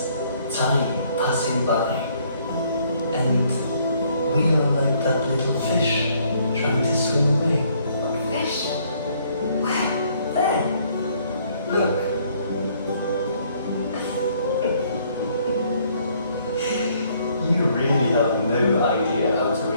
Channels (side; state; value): both; inverted; correlation -0.65